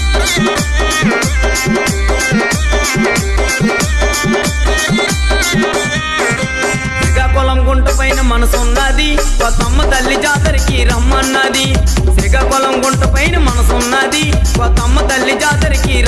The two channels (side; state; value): both; identical; correlation 1.00